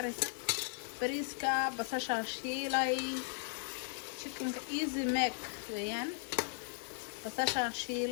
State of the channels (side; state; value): right; silent; digital silence